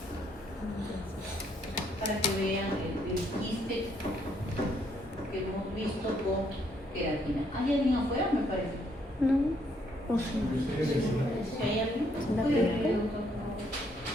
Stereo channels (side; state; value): both; normal; correlation 0.71